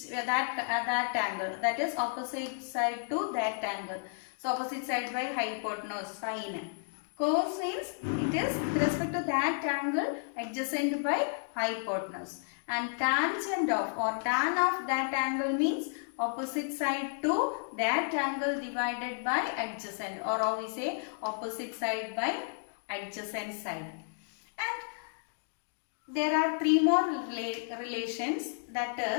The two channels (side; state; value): right; silent; digital silence